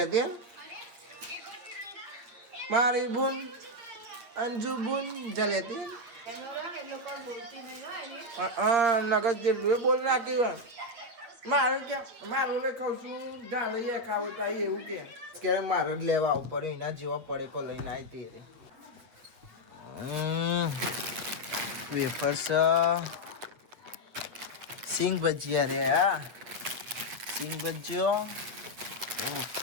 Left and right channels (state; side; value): late; left; 8.6 ms